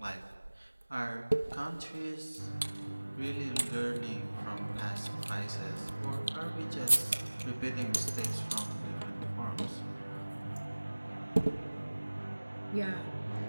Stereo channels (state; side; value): inverted; both; correlation -1.00